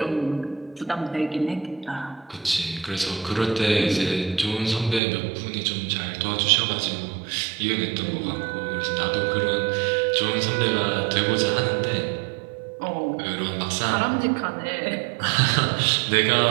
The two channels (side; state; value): left; drops out; at 5.0 s